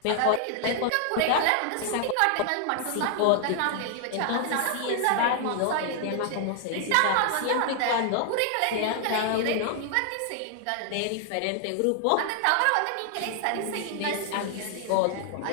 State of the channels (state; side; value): different; both; correlation 0.00